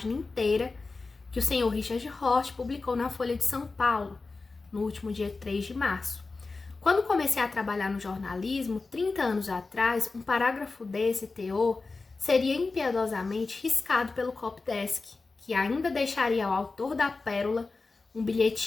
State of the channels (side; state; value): right; quieter; 3.9 dB